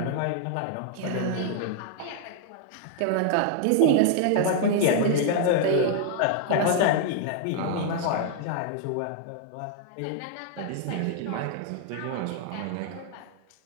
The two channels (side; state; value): both; different; correlation 0.00